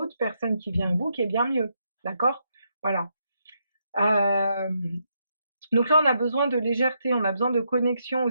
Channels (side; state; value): both; inverted; correlation -0.80